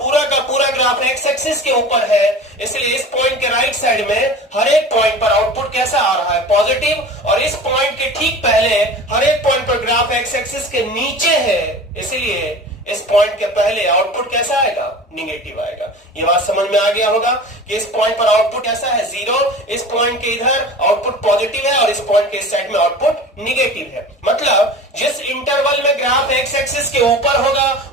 का पूरा ग्राफ x एक्सिस के ऊपर है, इसलिए इस पॉइंट के राइट साइड में हर एक पॉइंट पर आउटपुट कैसा आ रहा है? पॉजिटिव। और इस पॉइंट के ठीक पहले हर एक पॉइंट पर ग्राफ x एक्सिस के नीचे है, इसलिए इस पॉइंट के पहले आउटपुट कैसा आएगा? निगेटिव आएगा। ये बात समझ में आ गया होगा कि इस पॉइंट पर आउटपुट कैसा है? 0। इस पॉइंट के इधर आउटपुट पॉजिटिव है और इस पॉइंट के इस साइड में आउटपुट निगेटिव है। मतलब जिस इंटरवल में ग्राफ x एक्सिस के ऊपर होगा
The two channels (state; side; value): normal; both; correlation 0.37